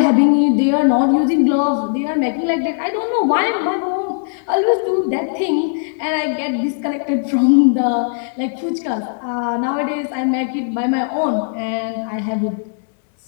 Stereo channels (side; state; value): right; silent; digital silence